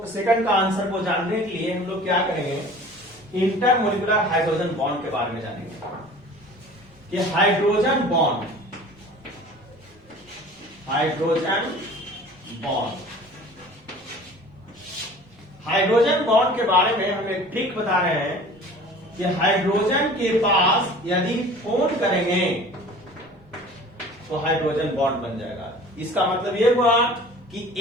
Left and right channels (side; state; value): both; normal; correlation 0.44